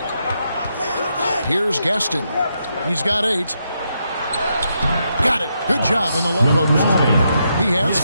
Here's Gaston. He's got 8. Got it. Good job in the low post. He has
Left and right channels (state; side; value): inverted; both; correlation -0.81